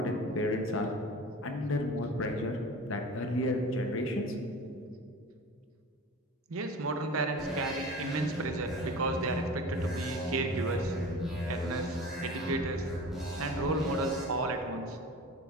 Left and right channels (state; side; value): normal; both; correlation 0.37